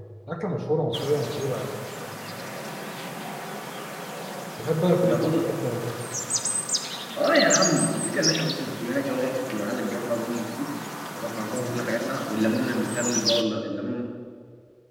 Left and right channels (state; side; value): identical; both; correlation 1.00